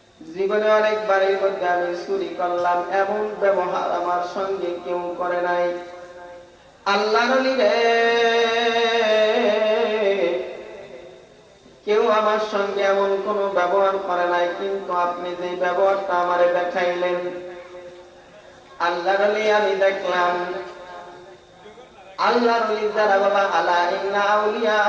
জীবনে অনেকবার এর মধ্যে আমি চুরি করলাম, এমন ব্যবহার আমার সঙ্গে কেউ করে নাই। আল্লাহর ওলি রে, কেউ আমার সঙ্গে এমন কোন ব্যবহার করে নাই, কিন্তু আপনি যে ব্যবহারটা আমারে দেখাইলেন, আল্লাহর ওলি আমি দেখলাম। আল্লাহর ওলি যারা বাবা, আলা ইন্না আউলিয়া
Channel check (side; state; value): both; identical; correlation 1.00